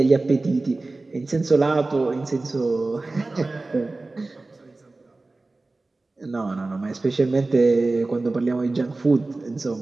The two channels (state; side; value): quieter; left; 3.3 dB